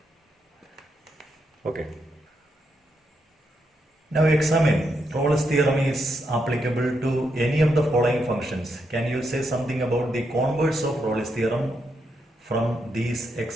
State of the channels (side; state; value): both; normal; correlation 0.81